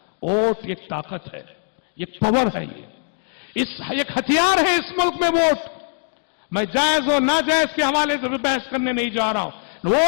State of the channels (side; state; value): right; silent; digital silence